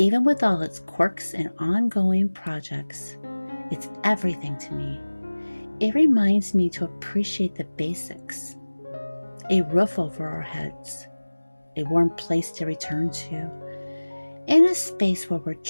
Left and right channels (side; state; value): both; inverted; correlation -1.00